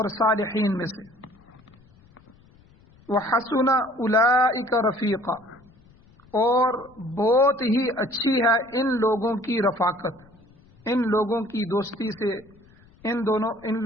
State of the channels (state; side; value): noise; left; rumble, 28 dB below the sound